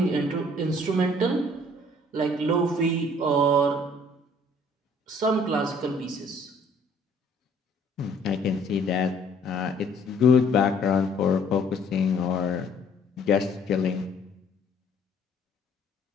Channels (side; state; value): both; normal; correlation 0.59